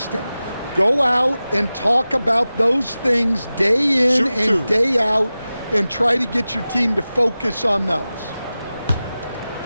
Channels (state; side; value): inverted; both; correlation -0.96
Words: Go out and talk about those things day in and day out and try to get your team to focus on those.